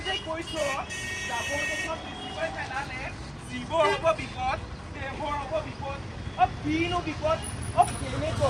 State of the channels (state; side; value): identical; both; correlation 1.00